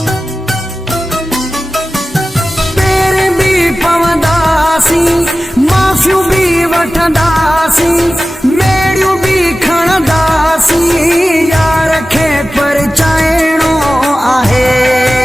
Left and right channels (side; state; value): both; normal; correlation 0.96